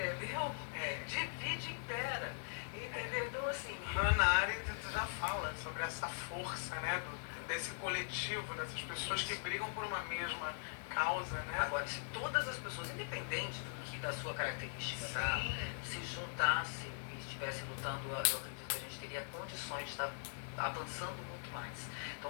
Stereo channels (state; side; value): silent; right; digital silence